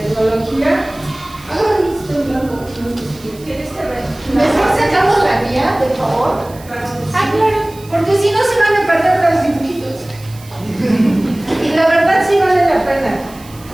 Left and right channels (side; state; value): right; noise; hiss, 22 dB below the sound